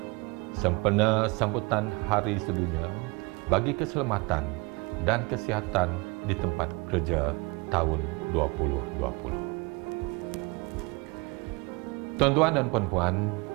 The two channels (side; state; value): left; quieter; 26.8 dB